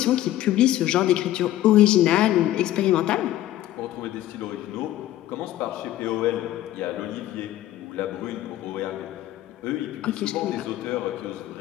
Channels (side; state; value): right; quieter; 14.0 dB